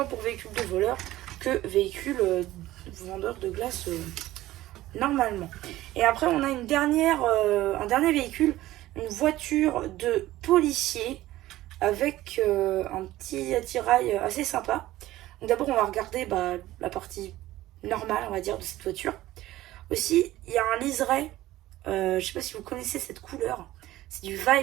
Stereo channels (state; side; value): quieter; left; 15.8 dB